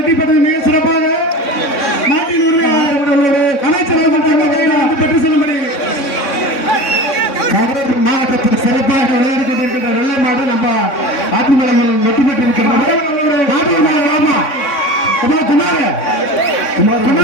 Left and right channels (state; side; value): late; right; 3.6 ms